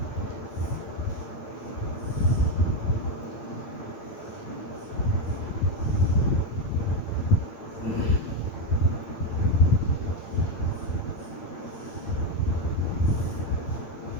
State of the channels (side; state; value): right; late; 8.8 ms